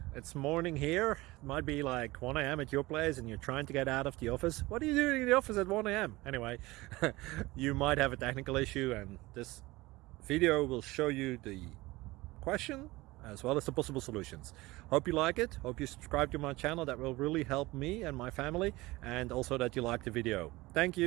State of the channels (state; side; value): quieter; left; 20.4 dB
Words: it's morning here. It might be like 1 a.m. at your place and you're trying to get out of the office. What are you doing in the office at 1 a.m.? Anyway, you might have a technical issue and this video will show you the question as well as the possible solutions. Hope you like it, hope you subscribe to my channel. That will really help me and my family, and also that you like the video. Thank